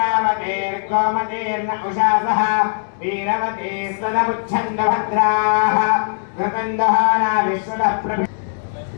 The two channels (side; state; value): right; silent; 66 dB below the other